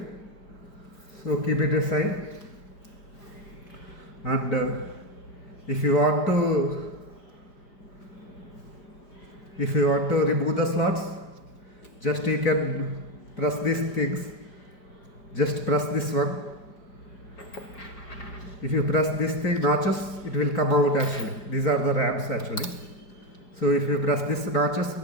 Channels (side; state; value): right; late; 5.0 ms